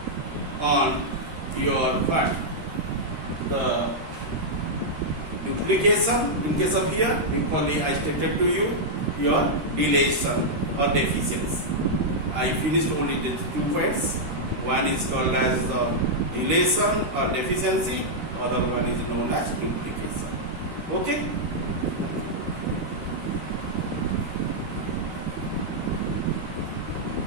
on your what? The duplication in case of here, equally I stated to you your deletion or deficiency. I finished only the 2 points. One is called as the deletion or deficiency, other one is known as duplication. Okay.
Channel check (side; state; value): left; late; 13 ms